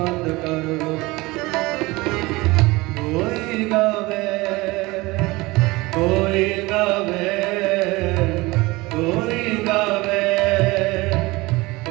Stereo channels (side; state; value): left; quieter; 21.8 dB